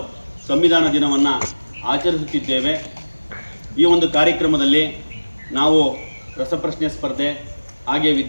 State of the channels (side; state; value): both; inverted; correlation -1.00